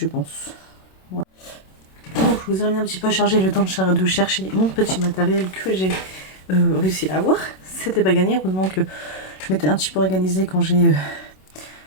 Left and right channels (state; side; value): late; right; 27 ms